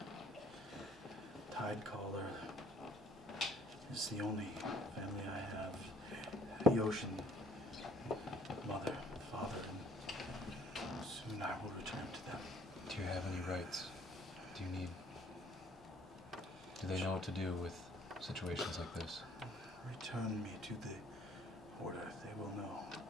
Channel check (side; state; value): both; normal; correlation 0.57